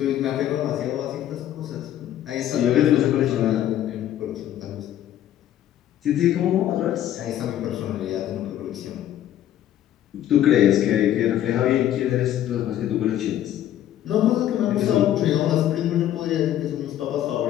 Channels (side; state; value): right; quieter; 11.8 dB